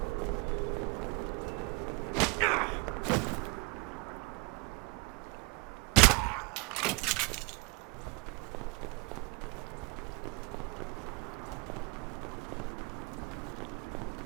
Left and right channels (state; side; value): quieter; left; 29.5 dB